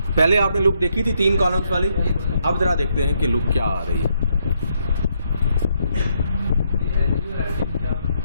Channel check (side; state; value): both; inverted; correlation -0.75